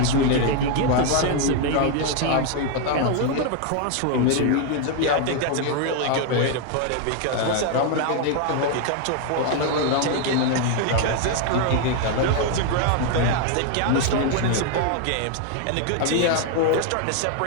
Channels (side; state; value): both; different; correlation 0.01